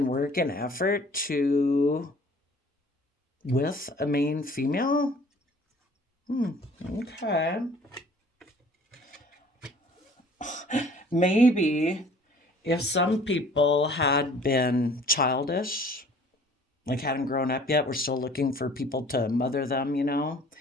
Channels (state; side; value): normal; both; correlation 0.51